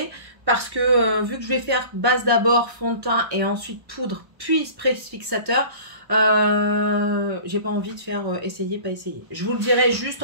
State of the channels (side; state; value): left; late; 1.1 ms